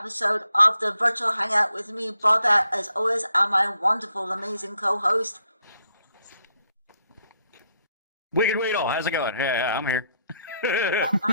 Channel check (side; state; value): both; inverted; correlation -0.76